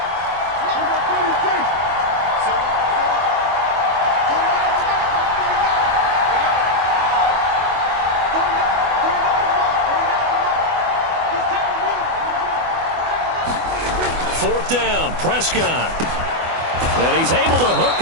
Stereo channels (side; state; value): left; late; 24 ms